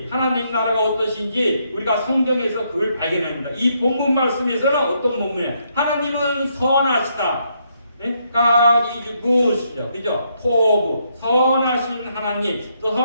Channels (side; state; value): both; inverted; correlation -0.76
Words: 하나님 나라가 어떠신지 우리가 성경에서 그걸 발견합니다. 이 본문 말씀에서는 어떤 본문이에요? 하나님은 선하시다. God is good이죠. 그죠? 포부, 선하신 하나님, 또